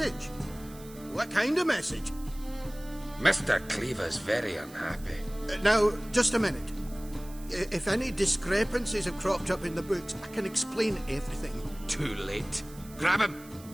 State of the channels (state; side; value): noise; right; hiss, 20 dB below the sound